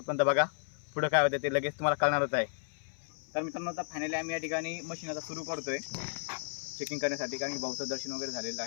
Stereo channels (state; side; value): silent; right; 55 dB below the other